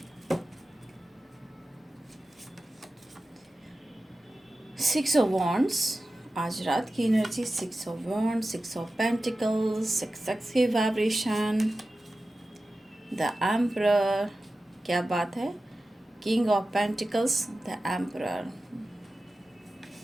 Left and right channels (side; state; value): both; normal; correlation 0.94